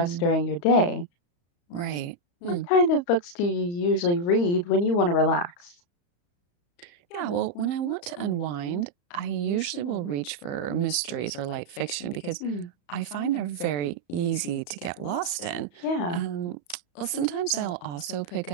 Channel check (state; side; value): late; right; 35 ms